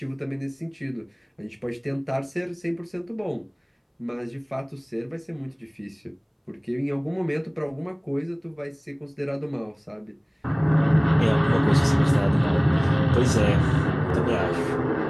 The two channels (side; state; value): both; identical; correlation 1.00